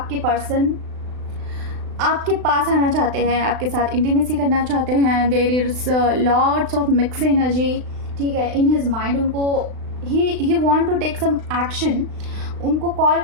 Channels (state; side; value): late; left; 36 ms